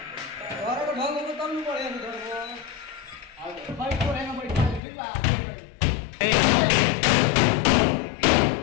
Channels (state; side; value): drops out; right; at 4.8 s